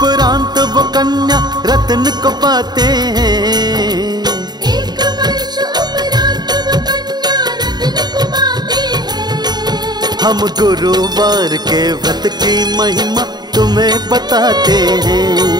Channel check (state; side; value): late; left; 0.20 ms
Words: वो कन्या रत्न को पाते हैं। एक वर्ष उपरांत वो कन्या रत्न को पाते हैं। हम गुरुवार के व्रत की महिमा तुम्हें बताते हैं।